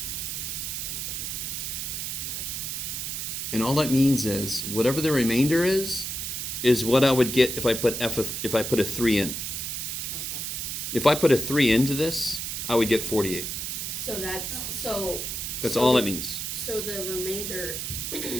And all that means is whatever the remainder is what I would get if I put a 3 in. Okay. If I put a 3 into this, I would get 48. So that's That's all that means. So the remainder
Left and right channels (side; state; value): right; noise; hiss, 4 dB below the sound